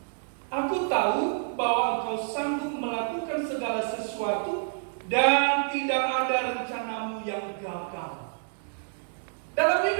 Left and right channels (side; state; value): left; silent; digital silence